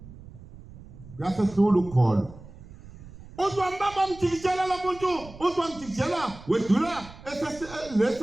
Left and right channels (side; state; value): right; noise; rumble, 18 dB below the sound